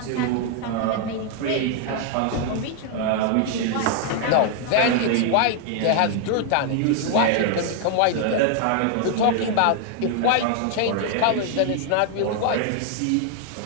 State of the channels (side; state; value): both; different; correlation 0.00